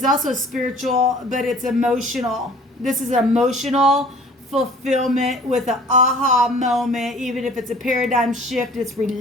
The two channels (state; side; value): normal; both; correlation 0.50